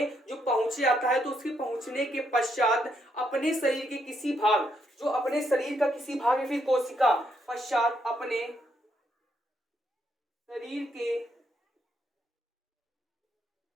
जो पहुंचे आता है, तो उसके पहुंचने के पश्चात अपने शरीर के किसी भाग, जो अपने शरीर का किसी भाग या फिर कोशिका पश्चात अपने शरीर के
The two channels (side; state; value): both; normal; correlation 0.76